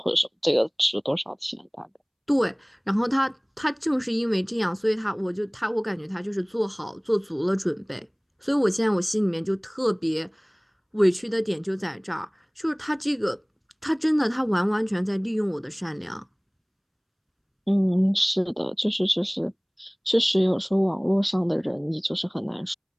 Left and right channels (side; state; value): both; identical; correlation 1.00